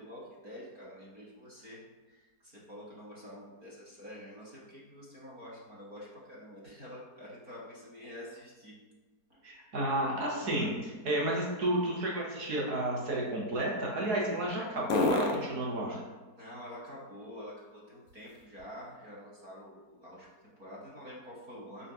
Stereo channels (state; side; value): late; left; 4.1 ms